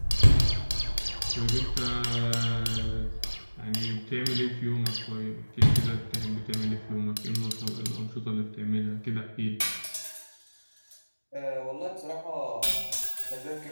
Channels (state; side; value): inverted; both; correlation -1.00